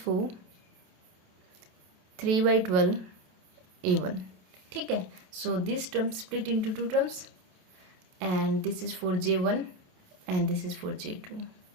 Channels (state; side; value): late; left; 27 ms